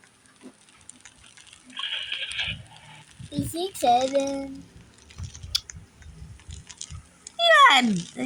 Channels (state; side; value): identical; both; correlation 1.00